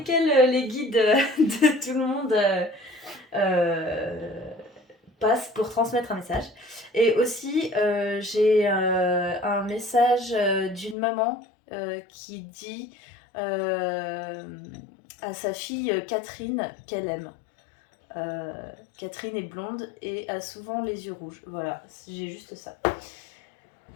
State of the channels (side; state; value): right; drops out; at 11.0 s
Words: les guides de tout le monde euh, passent pour transmettre un message. Et aussi, j'ai un message d'une maman qui dit à sa fille Catherine qu'elle aime. Catherine est blonde et a souvent les yeux rouges. Voilà, j'ai juste ça.